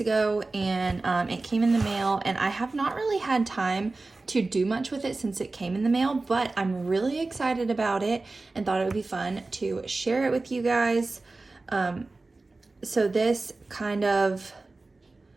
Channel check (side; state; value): left; quieter; 3.4 dB